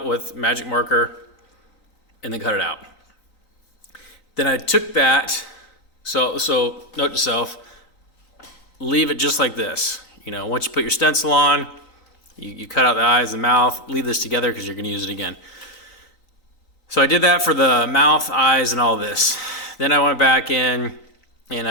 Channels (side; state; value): right; late; 3.9 ms